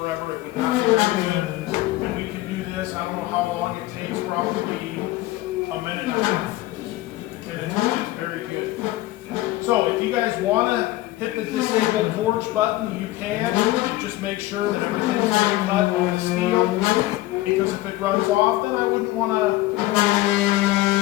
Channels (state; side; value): quieter; right; 17.3 dB